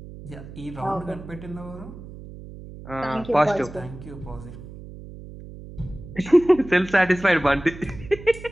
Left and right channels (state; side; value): noise; right; hum, 14 dB below the sound